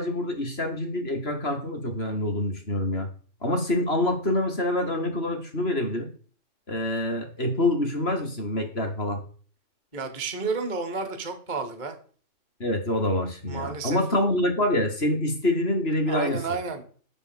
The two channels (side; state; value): right; late; 3.0 ms